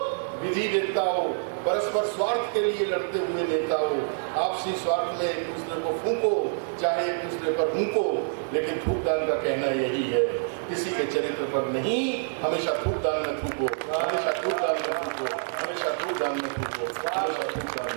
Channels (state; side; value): silent; left; digital silence